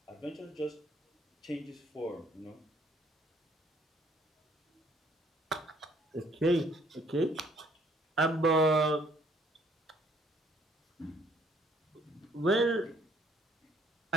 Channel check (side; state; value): both; normal; correlation 0.62